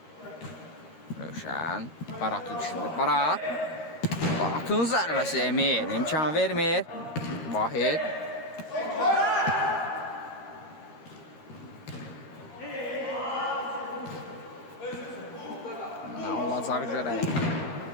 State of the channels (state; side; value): late; right; 13 ms